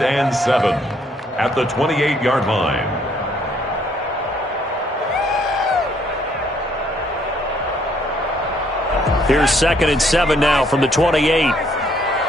and 7 at the 28-yard line. Here's 2nd and 7 now from the 28.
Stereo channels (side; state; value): both; normal; correlation 0.67